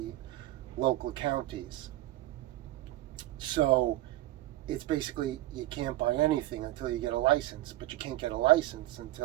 local counties. So it's basically you can't buy anything until you get a license, but you can't get a license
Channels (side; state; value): left; quieter; 16.4 dB